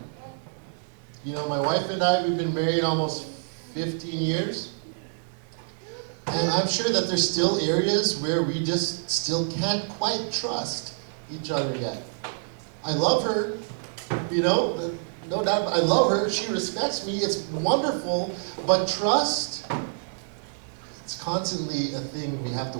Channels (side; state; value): left; silent; 60 dB below the other